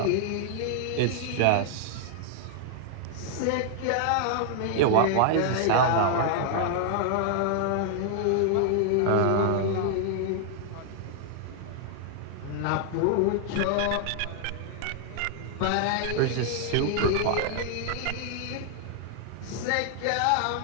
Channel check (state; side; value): different; both; correlation 0.00